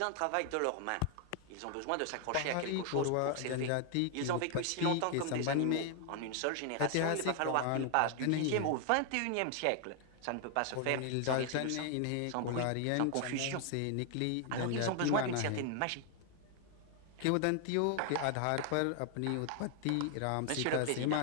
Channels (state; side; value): different; both; correlation 0.00